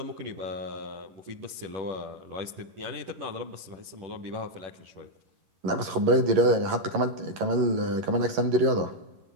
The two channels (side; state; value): left; late; 11 ms